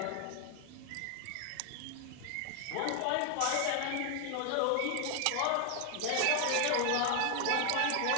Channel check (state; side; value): different; both; correlation 0.01